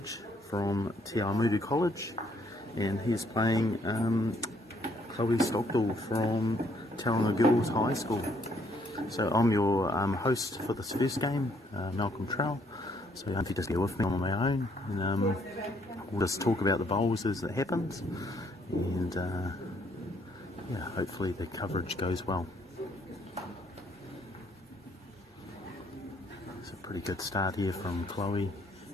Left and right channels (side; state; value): both; normal; correlation 0.67